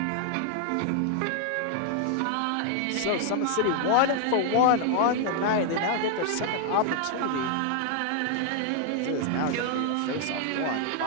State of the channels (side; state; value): both; different; correlation 0.00